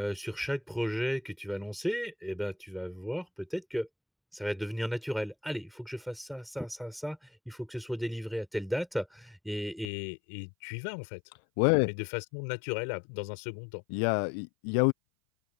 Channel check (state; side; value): drops out; right; at 9.9 s